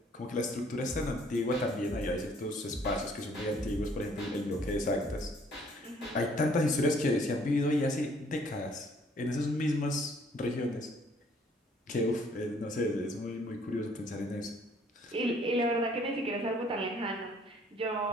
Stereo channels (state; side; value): normal; both; correlation 0.61